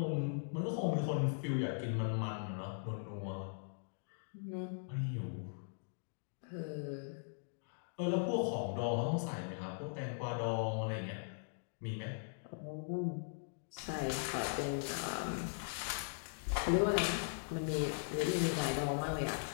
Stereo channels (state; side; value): silent; right; digital silence